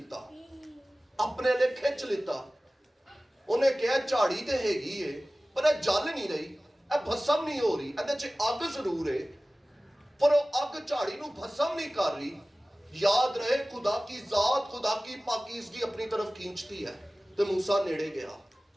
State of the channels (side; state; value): both; normal; correlation 0.97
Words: अपने लिए खिंच लिता। उन्हें कहा झाड़ी तो हैगी है पर यह जल नहीं रही, यह भस्म नहीं हो रही, इहदे च अग जरूर है पर वो अग झाड़ी नूं भस्म नहीं कर रही। याद रहे खुदा की जात, खुदा की पाकीज़गी अपनी तरफ खींचती है। तो मूसा नेड़े गया,